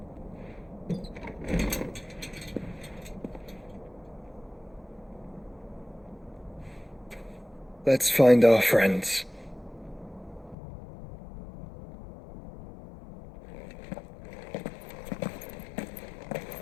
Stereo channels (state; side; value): drops out; right; at 10.6 s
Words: Let's find our friends.